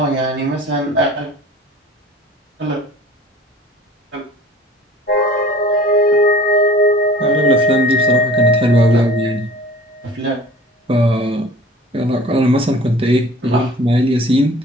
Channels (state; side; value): normal; both; correlation 0.45